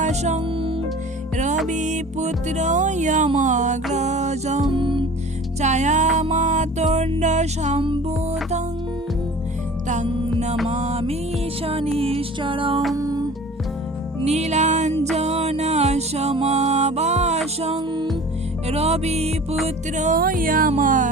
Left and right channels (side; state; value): both; normal; correlation 0.42